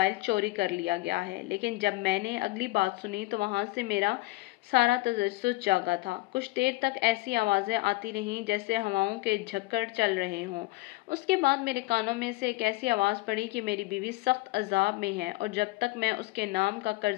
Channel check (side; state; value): right; quieter; 21.0 dB